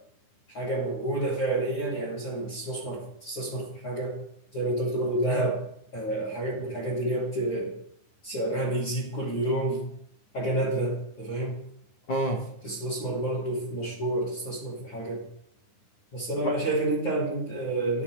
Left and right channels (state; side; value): late; right; 9.8 ms